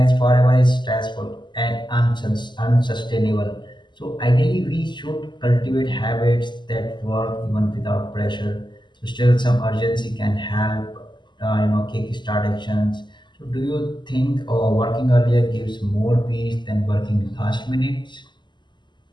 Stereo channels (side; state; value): right; late; 0.22 ms